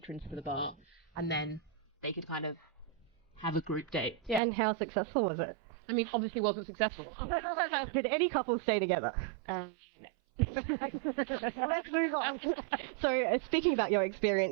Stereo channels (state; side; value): drops out; left; at 4.4 s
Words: to the bar, and then they could kind of have a group date. Yeah. And how successful was it? I mean, obviously wasn't successful. Did any couples stay together? No. Let's move on. So, speaking about your